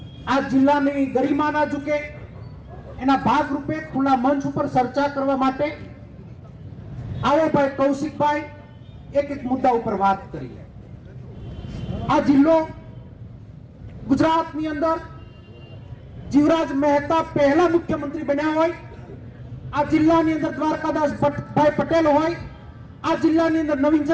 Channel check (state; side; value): identical; both; correlation 1.00